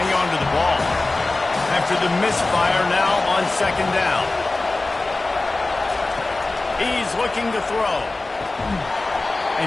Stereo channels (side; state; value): right; quieter; 3.1 dB